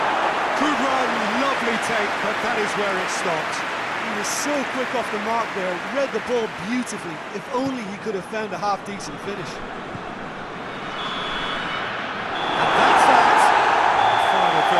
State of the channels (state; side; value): identical; both; correlation 1.00